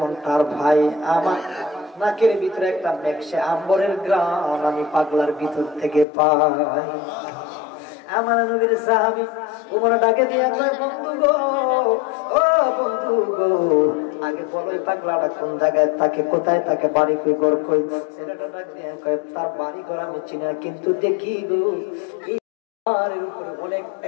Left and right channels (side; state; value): right; drops out; at 6.1 s